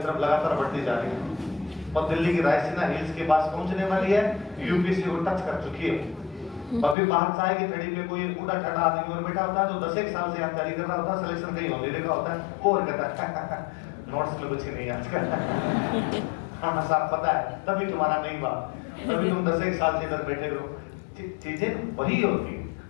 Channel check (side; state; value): right; drops out; at 7.0 s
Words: लगातार बढ़ती जा रही है और दिल्ली की रायसीना हिल्स के पास पहुंचने वाली है, यूपीसी को टच कर चुकी है। अभी बाहर चाय की थड़ी पे कोई उड़ा ठड़ा आदमी और बैठा होता है जो 10 एक साल से तैयारी कर रहा होता है, सिलेक्शन कहीं होने लगा होता है, वो और कहता है नोट्स में कुछ नहीं आजकल। हाँ साहब पता है, तभी तुम्हारा नहीं हुआ, तभी तुम 10 एक साल से इधर बैठे रहो। चीजें वही होती है,